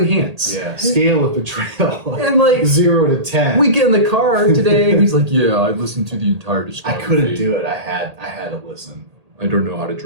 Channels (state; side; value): late; left; 1.8 ms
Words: hands. Yeah. Scale of betrayal. And like 0 to 10. we get in the car today and he's like, yeah, I listened to the entire discography. I couldn't do it. I had to listen. I don't know how to